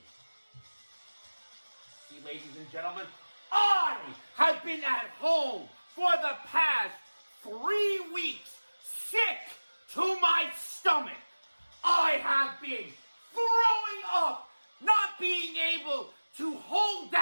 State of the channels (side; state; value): both; inverted; correlation -1.00